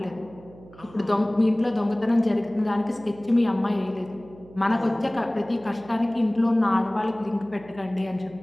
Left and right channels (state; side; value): noise; right; hum, 21 dB below the sound